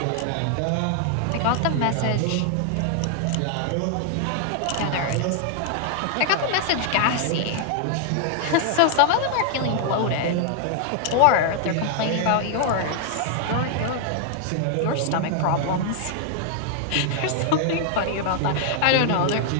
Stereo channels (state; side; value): different; both; correlation 0.00